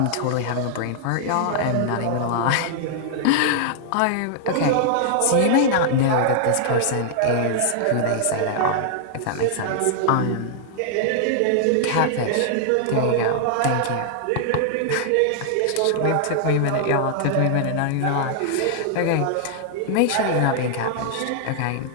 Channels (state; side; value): different; both; correlation -0.01